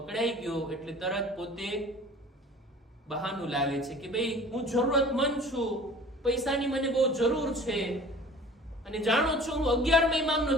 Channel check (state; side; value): normal; both; correlation 0.45